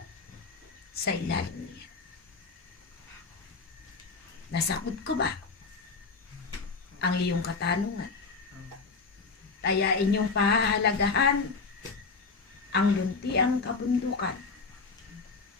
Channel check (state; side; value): quieter; right; 4.4 dB